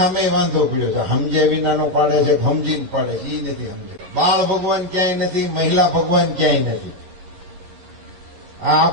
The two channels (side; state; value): left; late; 11 ms